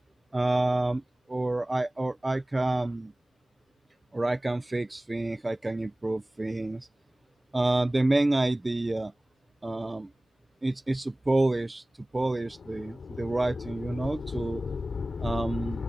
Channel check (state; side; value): normal; both; correlation 0.98